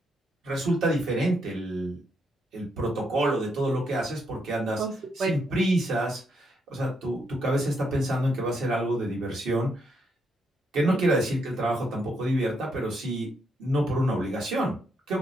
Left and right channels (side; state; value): both; normal; correlation 0.77